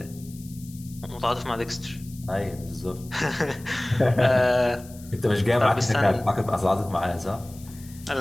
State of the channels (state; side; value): noise; left; hiss, 21 dB below the sound